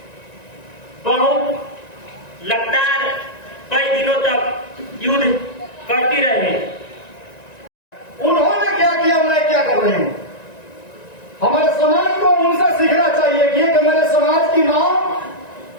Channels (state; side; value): late; right; 1.9 ms